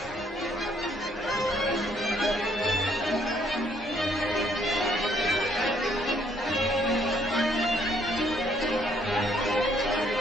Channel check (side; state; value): both; normal; correlation 0.67